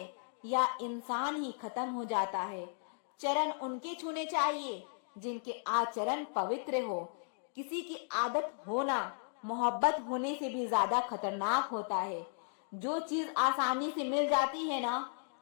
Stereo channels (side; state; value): right; silent; digital silence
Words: या इंसान ही खत्म हो जाता है। चरण उनके छूने चाहिए जिनके आचरण पवित्र हो। किसी की आदत होना मोहब्बत होने से भी ज्यादा खतरनाक होता है। जो चीज आसानी से मिल जाती है ना,